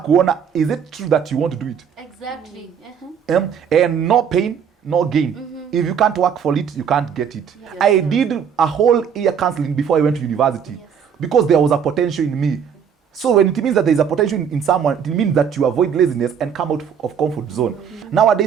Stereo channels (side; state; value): left; quieter; 7.6 dB